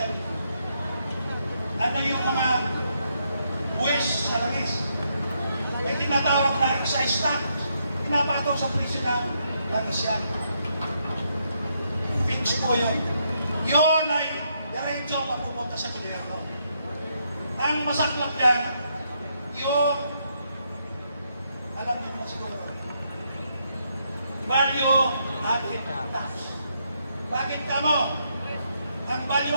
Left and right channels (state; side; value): inverted; both; correlation -0.77